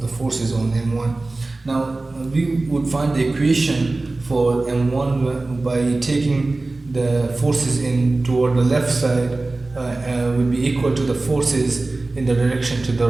the forces on m1. Now we would find the equation for m1 by taking the forces in toward the left side will be equal to the forces in the direction to the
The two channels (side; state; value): left; quieter; 3.2 dB